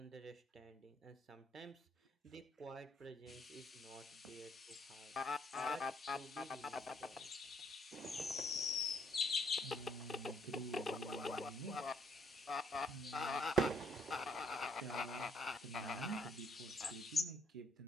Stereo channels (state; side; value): normal; both; correlation 0.67